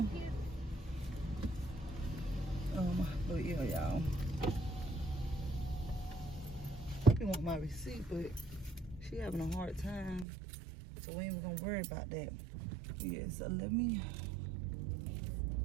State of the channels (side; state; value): left; drops out; at 10.2 s